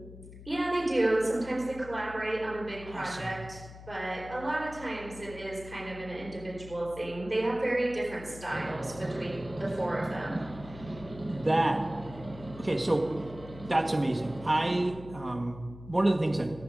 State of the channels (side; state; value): left; noise; hum, 15 dB below the sound